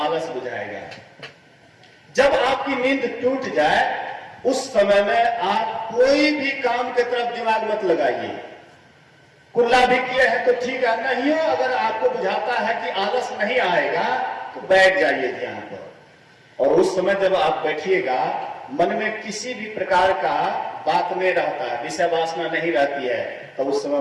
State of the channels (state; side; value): identical; both; correlation 1.00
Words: आलस बुझाएगा। जब आपकी नींद टूट जाए उस समय में आप कोई भी काम की तरफ दिमाग मत लगाइए। कुल्ला भी किए हैं तो ठीक है, नहीं हो अगर आपको बुझाता है कि आलस नहीं आएगा तो बैठ जाइए ध्यान पर। और उस समय जब आप बैठिएगा, मन में किसी भी प्रकार का बात नहीं रहता है, विषय वासना नहीं रहती है, तो उस समय